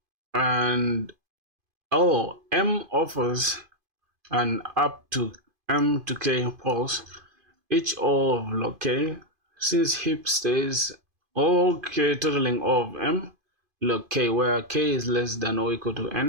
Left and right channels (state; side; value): late; left; 2.5 ms